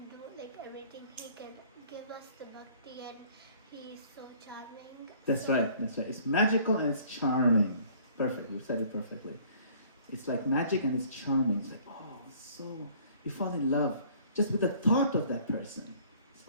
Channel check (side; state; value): both; inverted; correlation -0.55